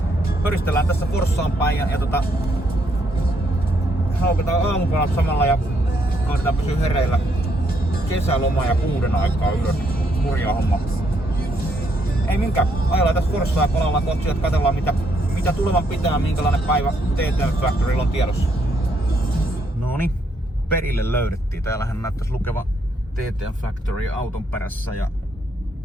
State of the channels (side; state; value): both; normal; correlation 0.73